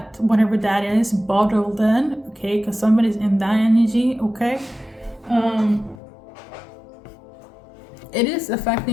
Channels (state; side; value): drops out; right; at 6.0 s